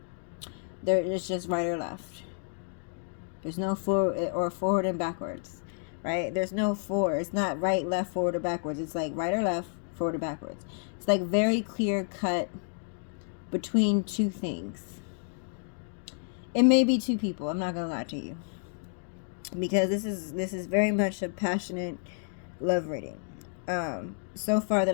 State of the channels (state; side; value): silent; right; 58 dB below the other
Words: It's just right or left. There's no forward and backwards, right? There's no forward. It's not right, left, forward, or backwards. It's like right or left, forward or backwards. It's like very clear cut between two things. It may be two people. I'm not gonna lie to you, because this is very much a passionate love reading. So far